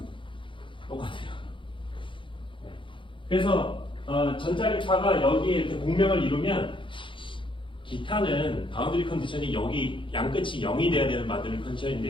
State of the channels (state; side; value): late; right; 0.25 ms